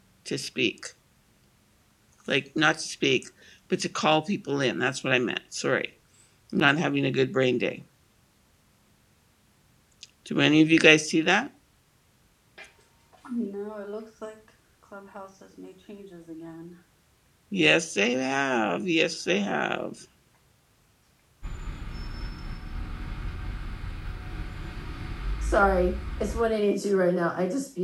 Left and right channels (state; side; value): identical; both; correlation 1.00